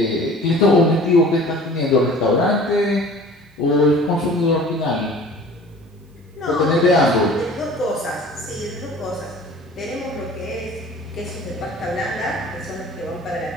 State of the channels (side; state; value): both; normal; correlation 0.46